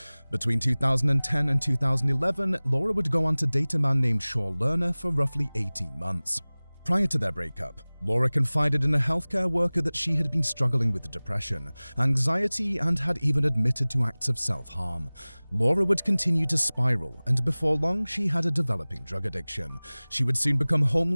Between 2010 and 2011, Laura would go on to date a man named Shaw Lerner for roughly 18 months. Prior to their breakup, Laura confided in a healthcare worker that she had been struggling with depression, anxiety, and had even admitted to acts of self-harm. Laura would continue to spiral, and before long, she had a developing drug addiction. She would soon become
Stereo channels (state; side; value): inverted; both; correlation -1.00